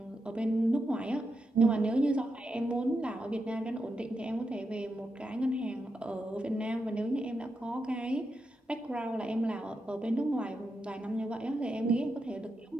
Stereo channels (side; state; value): both; normal; correlation 0.86